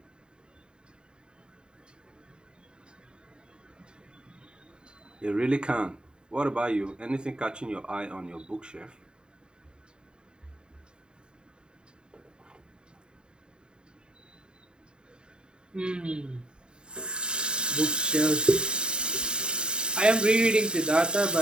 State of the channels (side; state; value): left; late; 0.049 ms